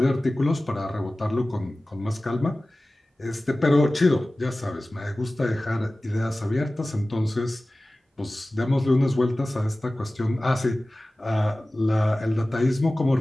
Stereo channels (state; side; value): normal; both; correlation 0.97